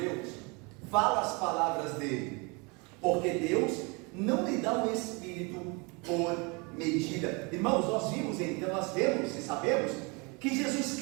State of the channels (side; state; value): left; quieter; 29.5 dB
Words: Deus fala as palavras dele, porque Deus não lhe dá o Espírito por medida. Irmãos, nós vimos então, nós vemos e sabemos que Jesus